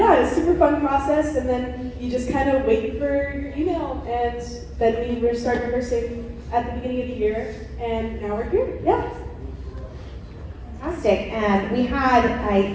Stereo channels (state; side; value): identical; both; correlation 1.00